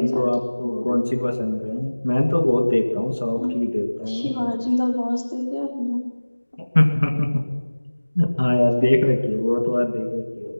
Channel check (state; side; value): inverted; both; correlation -1.00